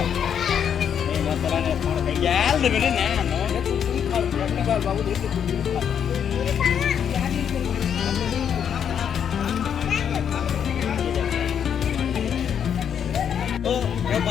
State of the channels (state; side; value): quieter; right; 8.3 dB